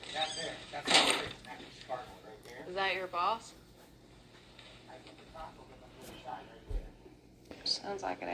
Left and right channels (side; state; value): both; identical; correlation 1.00